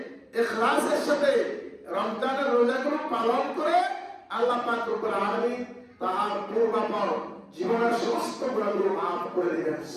ইখলাসের সাথে রমজানের রোজাগুলো পালন করে, আল্লাহ পাক রব্বুল আলামিন তার পূর্বাপর জীবনের সমস্ত গুনাহগুলো মাফ করে দিবেন।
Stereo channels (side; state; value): both; identical; correlation 1.00